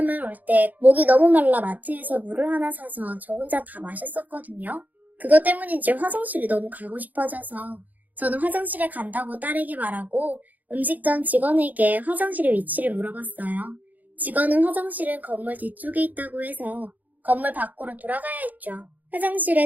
올 때 목이 너무 말라 마트에서 물을 하나 사서 저 혼자 다 마셨었거든요. 그것 때문인지 화장실이 너무 가고 싶어져서 저는 화장실에 간다고 딸에게 말하고 음식점 직원에게 화장실의 위치를 물어봤어요. 직원은 화장실은 건물 뒤쪽에 있다고 해서 건물 밖으로 돌아가야 했죠.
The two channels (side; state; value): left; late; 0.081 ms